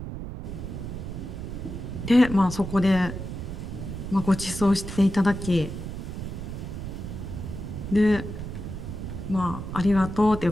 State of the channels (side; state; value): right; noise; rumble, 7 dB below the sound